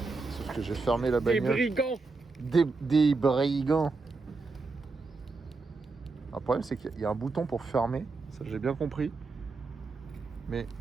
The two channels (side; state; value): left; quieter; 3.9 dB